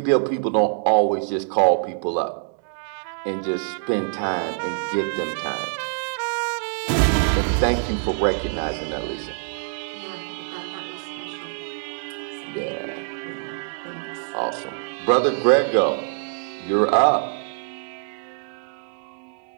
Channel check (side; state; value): left; silent; digital silence